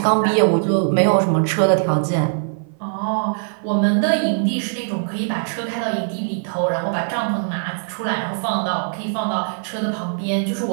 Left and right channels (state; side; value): silent; left; 56 dB below the other